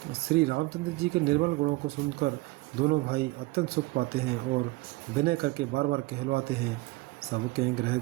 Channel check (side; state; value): left; quieter; 22.1 dB